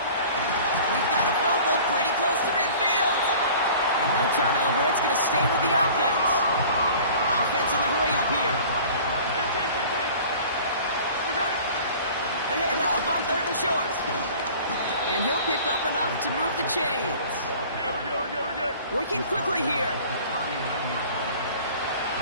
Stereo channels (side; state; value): both; inverted; correlation -0.45